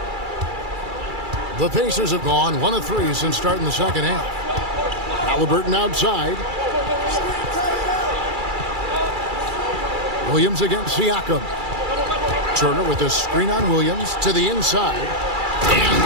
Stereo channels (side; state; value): left; late; 2.3 ms